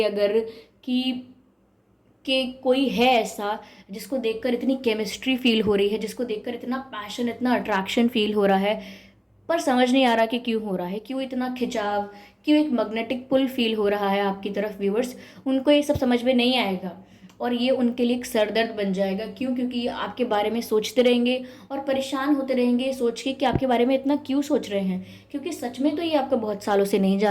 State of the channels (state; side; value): identical; both; correlation 1.00